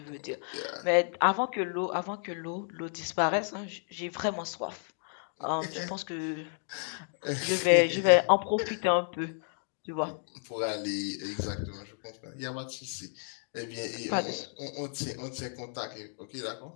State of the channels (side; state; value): right; silent; 56 dB below the other